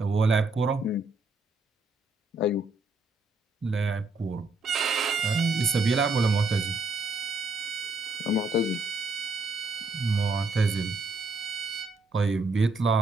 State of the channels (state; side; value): quieter; left; 3.0 dB